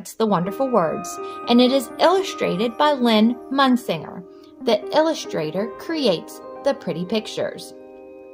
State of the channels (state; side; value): identical; both; correlation 1.00